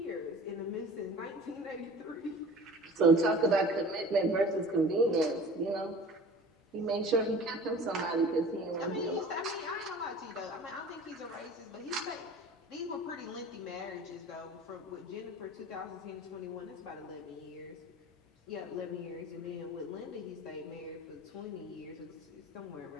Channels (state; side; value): normal; both; correlation 0.42